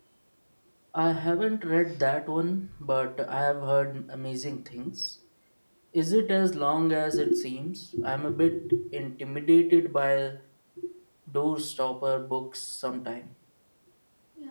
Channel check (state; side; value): inverted; both; correlation -1.00